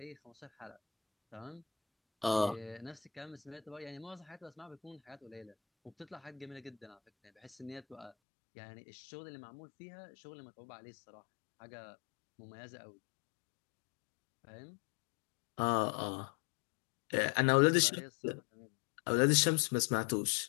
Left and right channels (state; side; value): drops out; right; at 8.1 s